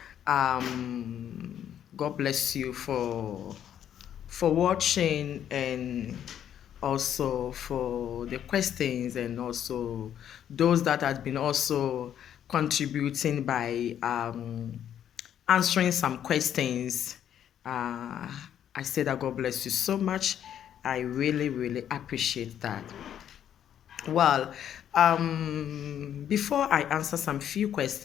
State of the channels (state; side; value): quieter; right; 9.9 dB